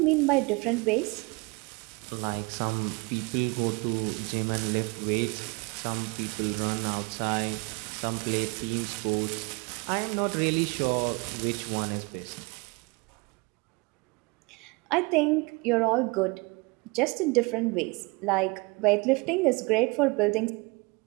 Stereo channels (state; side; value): quieter; left; 27.8 dB